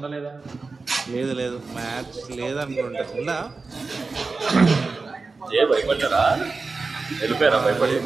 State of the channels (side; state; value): left; quieter; 4.0 dB